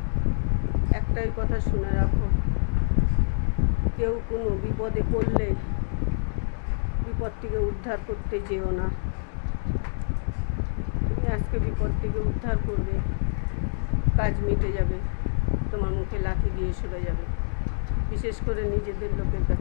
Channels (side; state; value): right; silent; digital silence